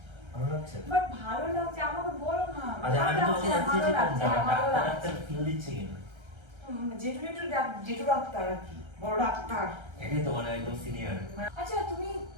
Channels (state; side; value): late; left; 1.3 ms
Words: ভালো লাগছে। বাট ভালো লাগছে আমাকে বলো না। আচ্ছা, আমি তোমাকে জানতে ভালো চাইছি লাগছে, ভালো লাগছে। ডাক্তার ফিল দিচ্ছে কিনা। জেঠু জেঠু জেঠু ডাক্তার আর কি, বড় ডাক্তার। এটাই তো মানে একদম সিনিয়র। আচ্ছা, তুমি